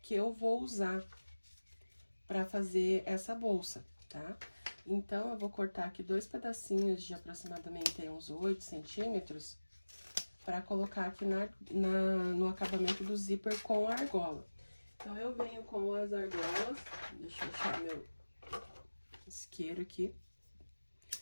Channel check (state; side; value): inverted; both; correlation -1.00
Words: que eu vou usar para fazer essa bolsa, tá? Então, eu vou cortar aqui dois pedacinhos de aproximadamente uns 8 centímetros para colocar aqui no acabamento do zíper com a argola. Então, eu venho com as argolas, deixa eu achar meu isqueiro aqui,